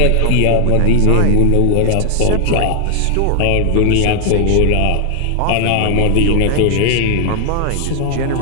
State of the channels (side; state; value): both; different; correlation 0.00